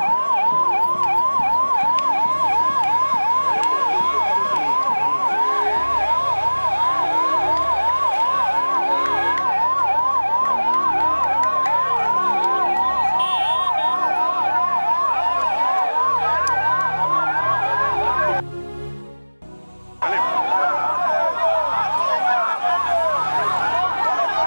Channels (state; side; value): inverted; both; correlation -1.00